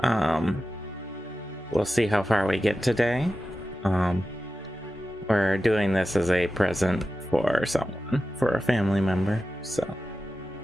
We'll see how far we get today. We're doing this as a present for someone, for a family member, so...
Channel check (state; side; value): normal; both; correlation 0.93